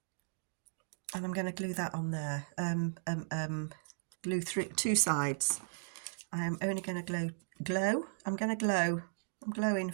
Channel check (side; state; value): left; silent; digital silence